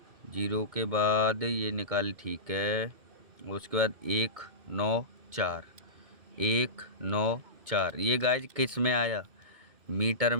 0 के बाद ये निकाल, ठीक है। उसके बाद 1 9 4, 1 9 4। ये गाइज किस में आया? मीटर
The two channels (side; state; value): left; late; 2.2 ms